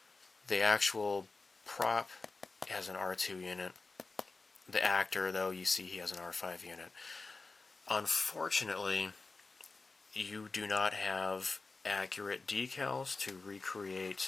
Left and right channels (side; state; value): right; quieter; 3.8 dB